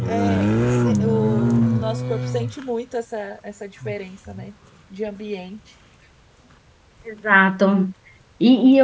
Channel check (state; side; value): identical; both; correlation 1.00